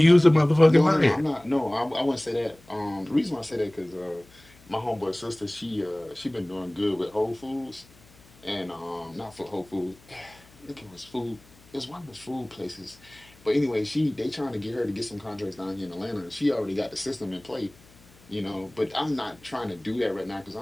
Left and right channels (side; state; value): left; noise; hum, 26 dB below the sound